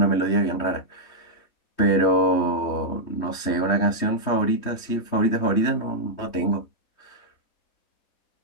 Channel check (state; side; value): late; right; 3.2 ms